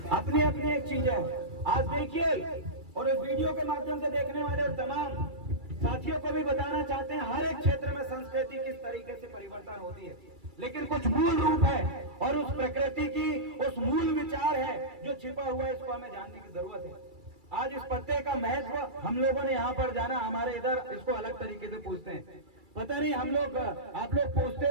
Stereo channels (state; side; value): late; left; 2.3 ms